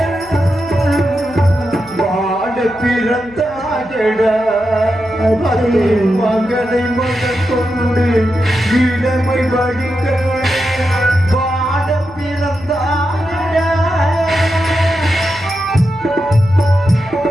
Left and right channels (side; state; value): left; noise; hum, 22 dB below the sound